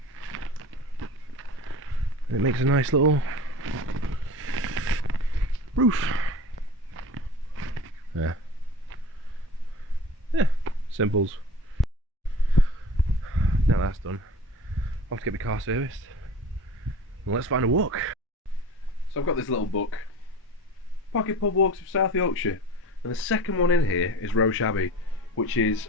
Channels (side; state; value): both; normal; correlation 0.39